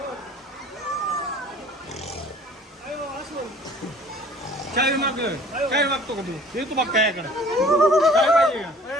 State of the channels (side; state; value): both; normal; correlation 0.51